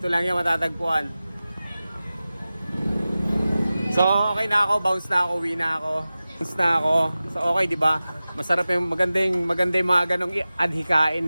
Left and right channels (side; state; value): both; inverted; correlation -0.96